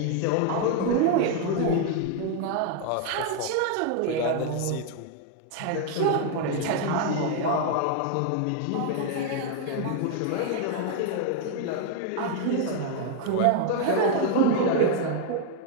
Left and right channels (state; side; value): different; both; correlation 0.00